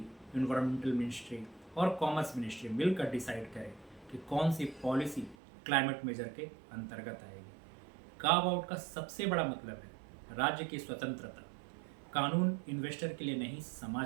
इन्वायरमेंटल मिनिस्ट्री और कॉमर्स मिनिस्ट्री मिलकर डिसाइड करें कि कौन सी पॉलिसी क्लाइमेट मेजर के अंतर्गत आएगी। कार्व आउट का सबसे बड़ा मतलब है राज्य की स्वतंत्रता। कानून इन्वेस्टर के लिए नहीं,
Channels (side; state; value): left; drops out; at 5.4 s